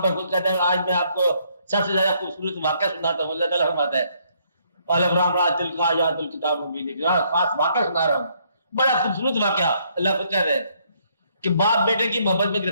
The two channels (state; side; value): inverted; both; correlation -0.69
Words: پر خود کہتا ہے آج میں آپ کو سب سے زیادہ خوبصورت واقعہ سناتا ہوں. اللہ تعالیٰ فرماتا ہے خاص واقعہ سنا رہا ہوں. بڑا خوبصورت واقعہ. اللہ خود کہہ رہے ہیں کہ باپ بیٹے کی محبت میں